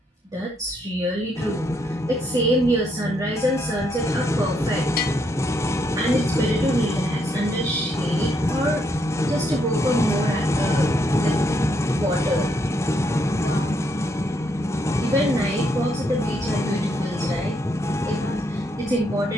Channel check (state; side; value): normal; both; correlation 0.75